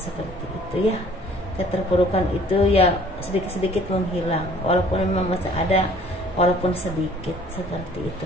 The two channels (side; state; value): both; normal; correlation 0.54